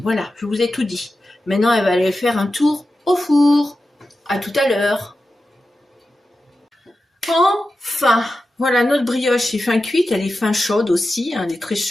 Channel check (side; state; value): both; normal; correlation 0.92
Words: je vous ai tout dit. Maintenant, elle va aller faire un tour au four. À tout à l'heure. Enfin, voilà, notre brioche est fin cuite, elle est fin chaude aussi, hein, elle est très